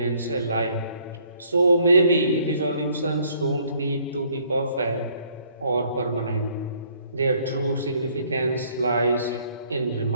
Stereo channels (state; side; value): inverted; both; correlation -0.63